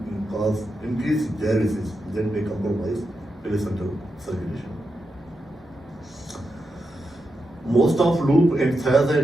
cause increased diuresis, that may compromise placental circulation. Most of loop and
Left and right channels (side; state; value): both; normal; correlation 0.87